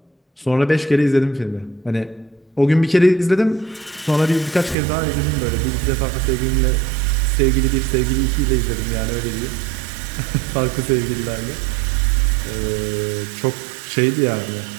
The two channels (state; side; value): drops out; left; at 4.8 s